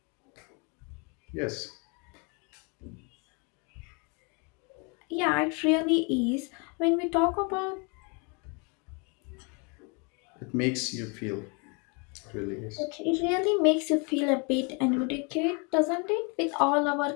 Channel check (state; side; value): quieter; right; 33.3 dB